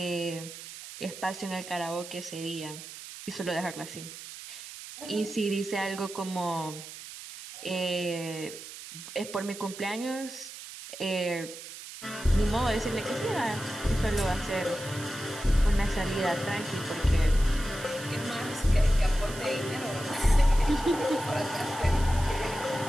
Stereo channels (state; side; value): noise; right; hiss, 12 dB below the sound